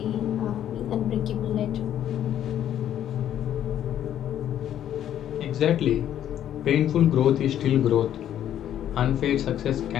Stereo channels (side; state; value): right; quieter; 10.8 dB